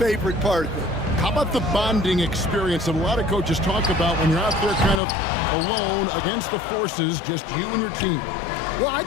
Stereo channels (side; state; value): right; drops out; at 5.0 s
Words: part of it. How about the bonding experience that a lot of coaches talk about when you're out there kind of alone against the forces, just you and your team? Well, I